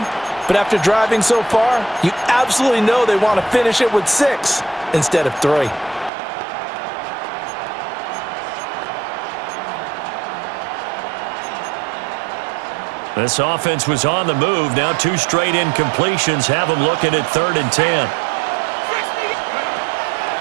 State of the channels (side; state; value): left; drops out; at 6.1 s